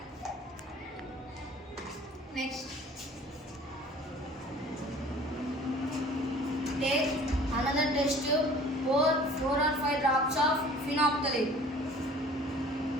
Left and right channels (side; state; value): both; normal; correlation 0.48